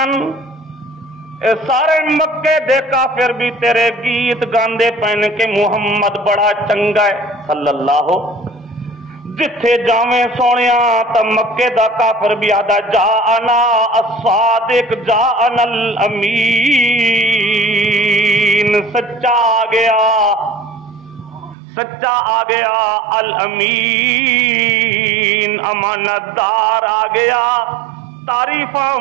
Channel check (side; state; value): left; drops out; at 21.6 s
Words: اے سارے مکے دے کافر بھی تیرے گیت گاندے پہن کے محمد بڑا چنگا ہے صلی اللہ، جتھے جاویں سونیا تا مکے دا کافر بھی آدھا جاءنا الصادق جاءنا الامین، سچا آ گیا، سچا آ گیا، الامین امانت دار آ گیا۔ تعریفاں